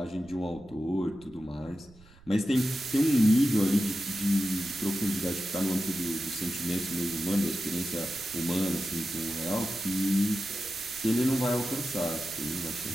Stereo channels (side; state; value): right; noise; rumble, 24 dB below the sound